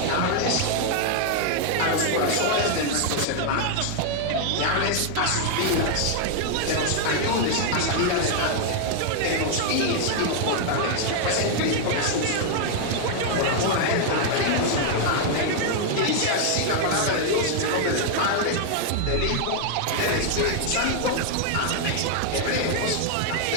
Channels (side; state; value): both; different; correlation 0.00